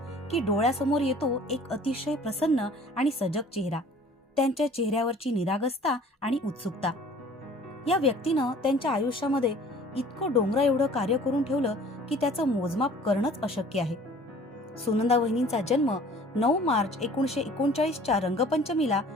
की डोळ्यासमोर येतो एक अतिशय प्रसन्न आणि सजग चेहरा, त्यांच्या चेहऱ्यावरची निरागसता आणि उत्सुकता. या व्यक्तीनं त्यांच्या आयुष्यामध्ये इतकं डोंगरा एवढं कार्य करून ठेवलं की त्याचं मोजमाप करणंच अशक्य आहे. सुनंदा वहिनींचा जन्म 9 मार्च 1939च्या रंगपंचमीला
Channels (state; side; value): normal; both; correlation 0.50